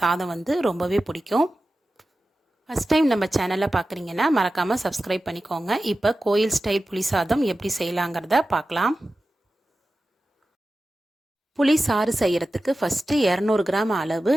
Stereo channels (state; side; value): normal; both; correlation 0.94